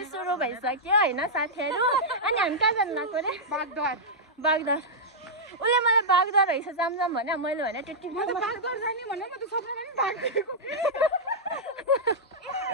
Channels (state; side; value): normal; both; correlation -0.08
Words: सुरु भइसक्यो होइन साथीहरू अनि हामी कहाँ जानु लाग्यो अरे बागद्वार उसले मलाई बागद्वार रहेछ जाम भने मैले भने त्यति बागद्वार जाने भने म त सपनामा पनि भाग्दिएको